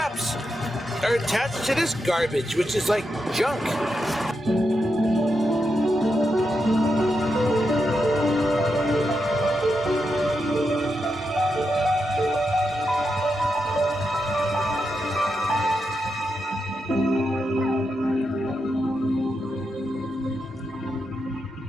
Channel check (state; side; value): normal; both; correlation 0.85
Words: are attached to this garbage, which is like junk.